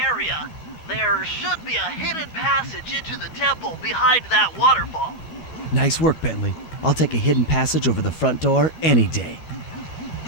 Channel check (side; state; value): right; late; 12 ms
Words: area, there should be a hidden passage into the temple behind that waterfall. Nice work, Bentley. I'll take a hidden passage over the front door any day.